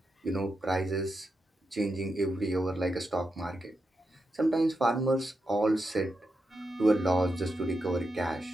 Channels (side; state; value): both; normal; correlation 0.87